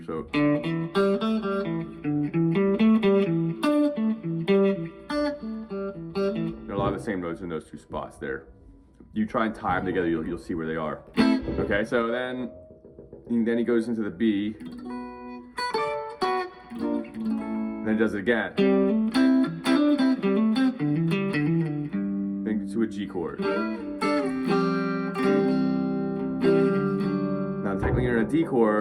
so. There are a lot of the same notes in those two spots there. You try and tie them together, you'll see where they are. Okay, so then he goes into the B. And then he does it again. Then to a G chord. Now technically you're in a D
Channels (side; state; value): both; identical; correlation 1.00